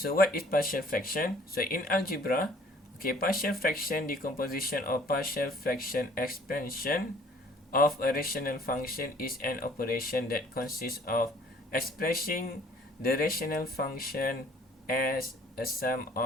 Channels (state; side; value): normal; both; correlation 0.55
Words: what is partial fraction? So in algebra, partial fraction decomposition or partial fraction expansion of a rational function is an operation that consists of expressing the rational function as a sum